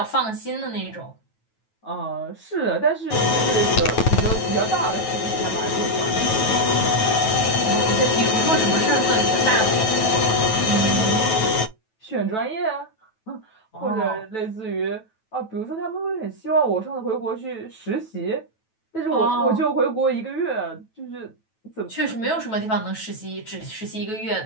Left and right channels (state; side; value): late; right; 9.2 ms